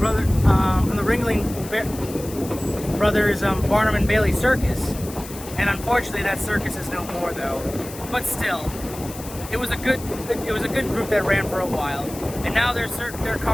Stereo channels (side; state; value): left; noise; hiss, 14 dB below the sound